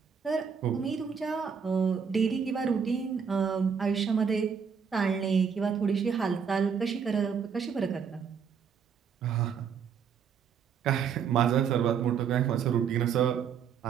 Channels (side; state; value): left; quieter; 6.9 dB